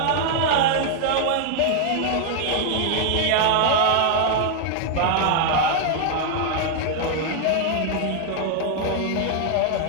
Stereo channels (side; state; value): both; different; correlation 0.00